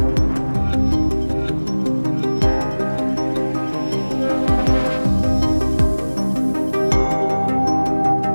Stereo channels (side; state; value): both; inverted; correlation -1.00